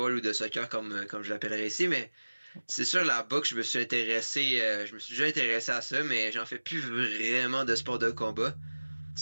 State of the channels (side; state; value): both; inverted; correlation -1.00